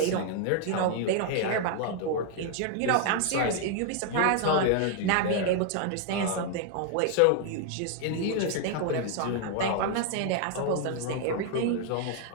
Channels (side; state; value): both; different; correlation 0.00